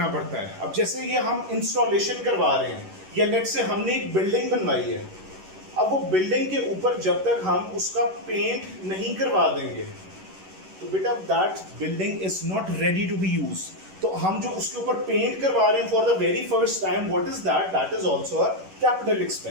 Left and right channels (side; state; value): left; late; 11 ms